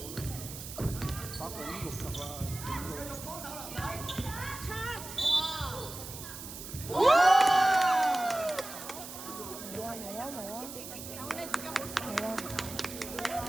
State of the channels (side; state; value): right; noise; hiss, 11 dB below the sound